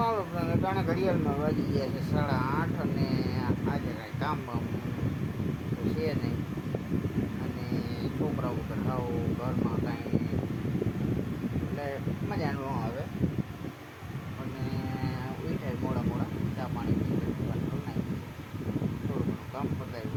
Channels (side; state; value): both; identical; correlation 1.00